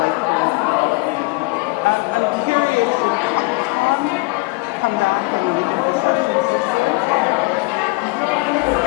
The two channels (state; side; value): quieter; right; 25.7 dB